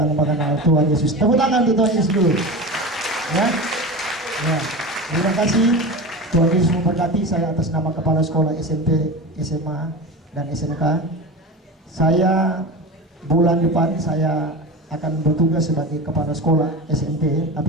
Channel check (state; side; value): normal; both; correlation 0.28